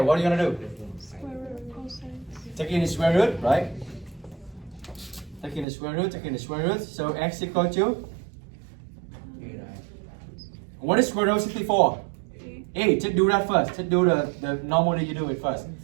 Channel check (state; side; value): drops out; left; at 5.7 s